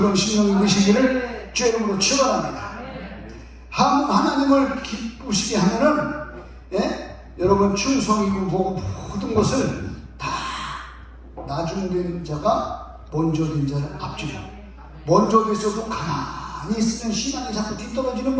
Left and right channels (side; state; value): both; identical; correlation 1.00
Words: 심령이 되시기를 주의 이름으로 축원합니다. 하나님을 기쁘시게 하면은 여러분 충성이고 뭐고 모든 것을 다 나중된 자가 먼저 된 자를 앞지고 먼저 있어도 가만히 있으면 신앙이 자꾸 뒤떨어지는